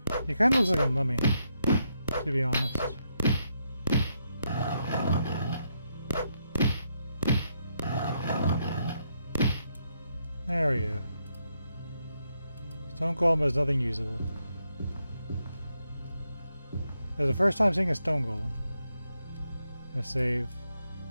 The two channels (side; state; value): both; inverted; correlation -0.80